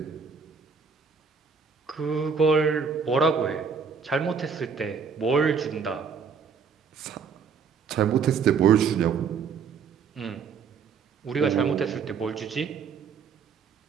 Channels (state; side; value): quieter; left; 6.0 dB